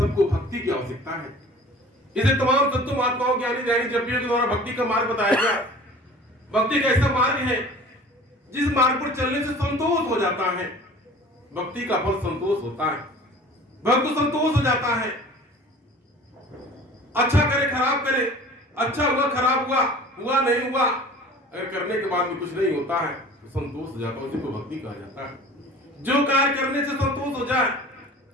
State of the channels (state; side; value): normal; both; correlation 0.44